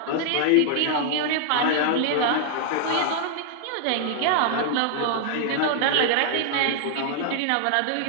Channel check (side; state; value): both; different; correlation -0.01